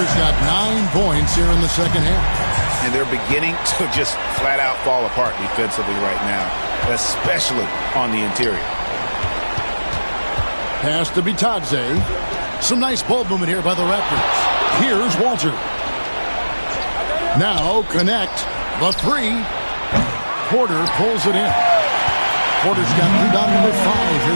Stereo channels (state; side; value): inverted; both; correlation -1.00